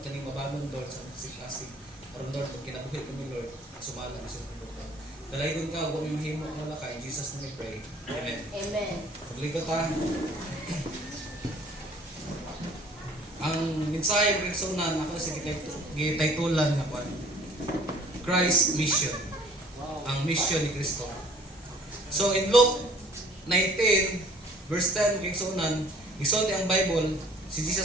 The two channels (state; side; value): normal; both; correlation 0.54